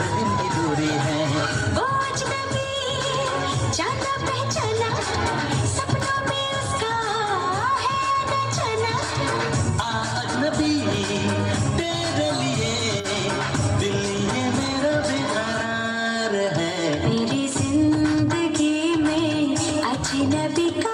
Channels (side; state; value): both; identical; correlation 1.00